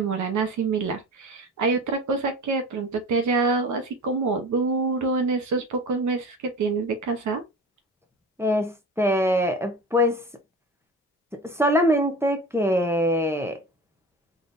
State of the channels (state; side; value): normal; both; correlation 0.33